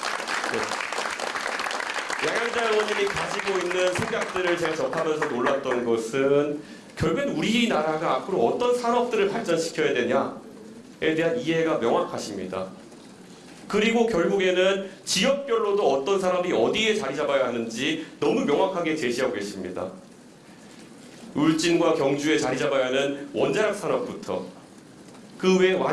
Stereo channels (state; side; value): identical; both; correlation 1.00